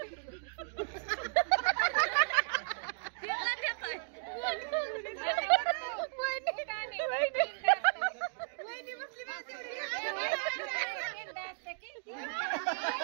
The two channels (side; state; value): left; silent; digital silence